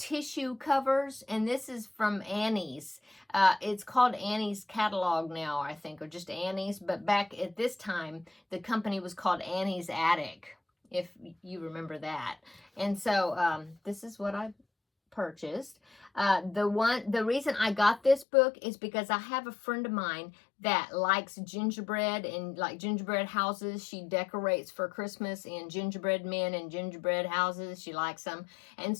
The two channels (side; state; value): right; drops out; at 18.2 s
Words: covers, and this is from Annie's. It's called Annie's catalog now, I think, or just Annie's, but back at this time, the company was called Annie's Attic, if you remember that. And so this is what I purchased. The reason I got this book is because I have a friend of mine that likes gingerbread and like gingerbread houses. She decorates for Christmas in gingerbread men and gingerbread houses. She likes them. And